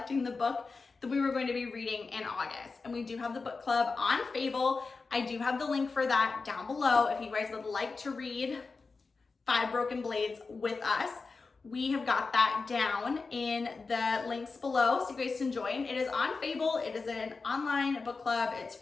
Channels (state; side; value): quieter; right; 4.3 dB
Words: the book that we were going to be reading in August. And we do have the book club on Fable. I do have the link for that down below if you guys would like to read 5 Broken Blades with us. We have got that down in the links below so you guys can join. It is on Fable. It is an online book club. It's